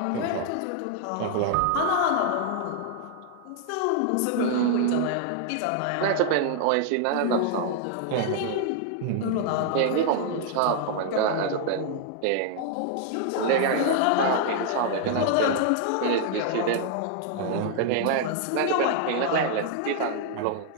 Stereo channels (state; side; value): different; both; correlation 0.00